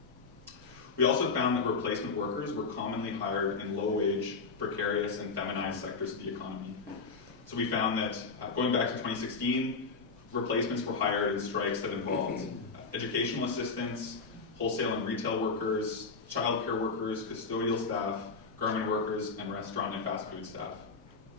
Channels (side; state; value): right; quieter; 4.5 dB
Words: We also found that replacement workers were commonly hired in low-wage, precarious, and feminized sectors of the economy. So we found that going back to 2016, replacements were hired in strikes that involved educational assistants, wholesale and retail workers, childcare workers, custodial staff, garment workers, and restaurant and fast food staff.